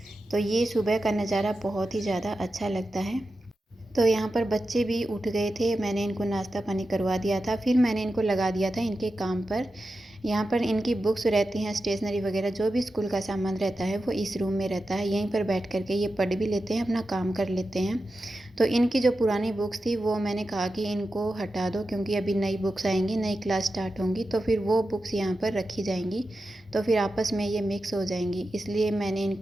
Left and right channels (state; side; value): normal; both; correlation 0.91